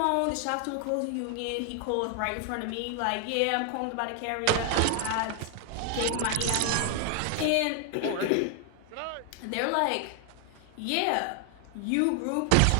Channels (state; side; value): different; both; correlation 0.00